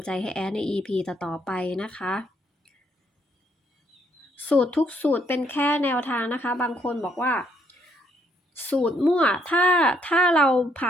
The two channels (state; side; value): normal; both; correlation 0.70